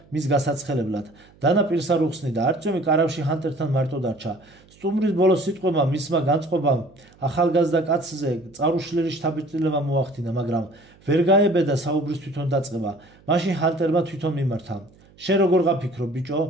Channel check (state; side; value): noise; right; hum, 28 dB below the sound